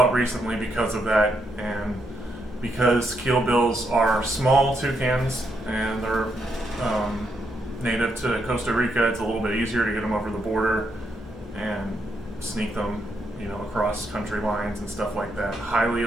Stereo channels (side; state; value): both; normal; correlation 0.79